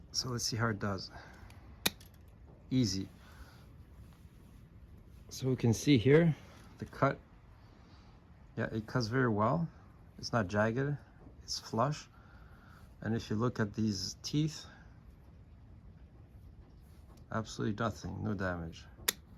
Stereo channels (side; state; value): both; identical; correlation 1.00